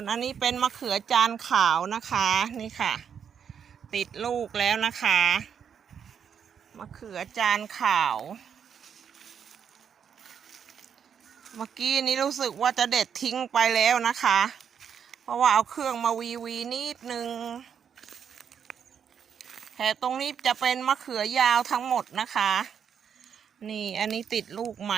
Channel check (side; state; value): left; quieter; 7.6 dB